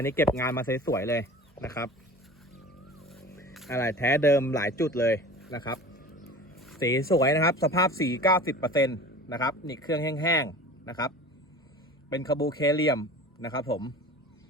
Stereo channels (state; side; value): normal; both; correlation 0.39